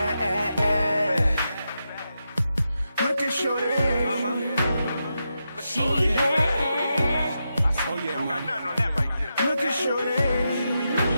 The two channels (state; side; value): inverted; both; correlation -0.87